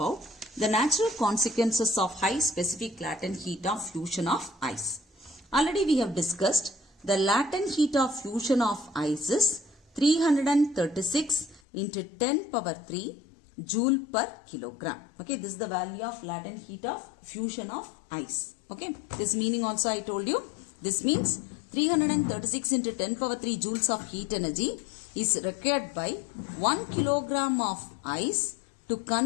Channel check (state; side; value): drops out; right; at 11.6 s